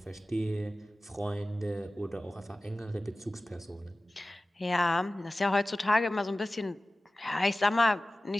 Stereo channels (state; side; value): normal; both; correlation 0.96